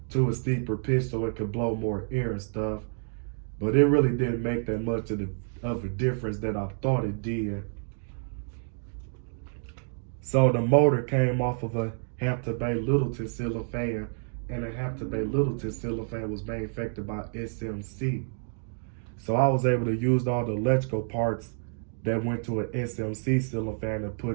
to a steeper pitch so it could blow more air and stuff. But it really didn't make that much of a difference that I thought it did. So the motor came off of a Hampton Bay Littleton ceiling fan, and the Hampton Bay Littleton ceiling fan was manufactured by SMC. So I was able to use all the electrical parts that went to an SMC ceiling fan and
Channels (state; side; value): silent; left; digital silence